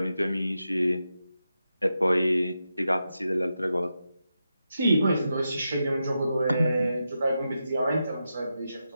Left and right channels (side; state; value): both; inverted; correlation -0.88